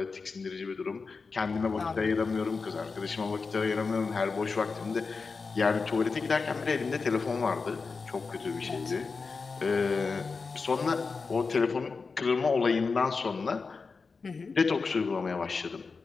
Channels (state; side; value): quieter; right; 4.6 dB